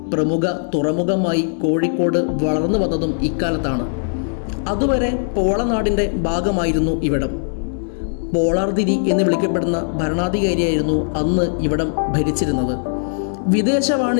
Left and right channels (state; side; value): silent; right; digital silence